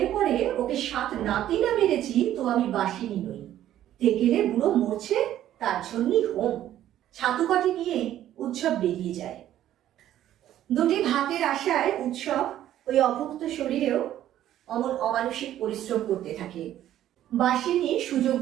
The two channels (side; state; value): left; quieter; 12.2 dB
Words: পড়ে ওকে 7 নাতি না মেরেছি তো আমি বাসিনী নই। তেকেলে বুড়ো মরছে, তার জন্যই হোম। ছাতু কটি নিয়ে উৎসব বেরিয়ে যায়। দুটি ভাতের আশায় উৎসব ওই অভুক্ত শরীরেও অমানসিক পরিশ্রম করতে থাকে। বাসিনী সুযোগ